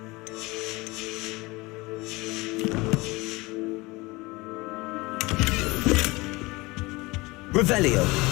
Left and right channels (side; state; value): right; quieter; 22.8 dB